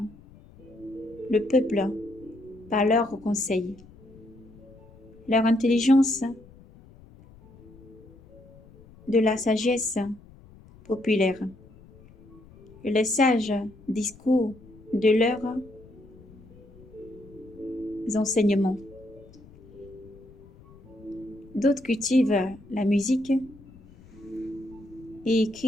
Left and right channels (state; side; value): noise; left; rumble, 23 dB below the sound